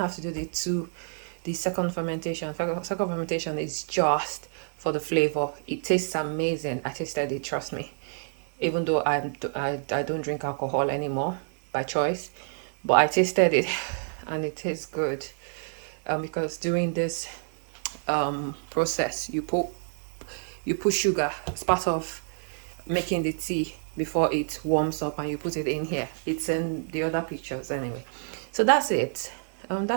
to do the second fermentation. Second fermentation is just for the flavor. It tastes amazing. I tasted it, trust me. Even though I don't drink alcohol anymore by choice, but I tasted it and it tastes good. Because during this process, you put sugar as part of making the tea before it warms up, and you put it in here. It's in the other pictures anyway. So that's it.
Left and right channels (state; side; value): silent; left; digital silence